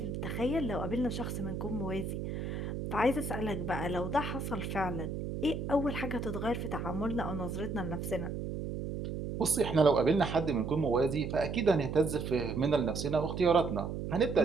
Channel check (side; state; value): right; noise; hum, 5 dB below the sound